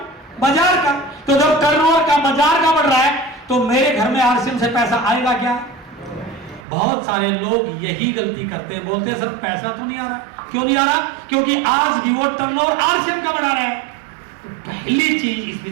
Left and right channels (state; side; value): drops out; left; at 6.7 s